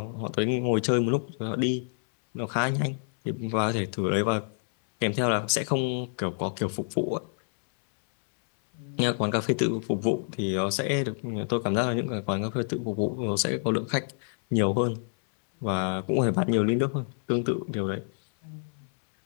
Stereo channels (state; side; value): silent; right; 60 dB below the other